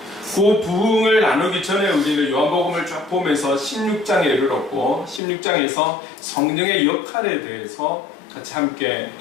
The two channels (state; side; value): drops out; right; at 5.2 s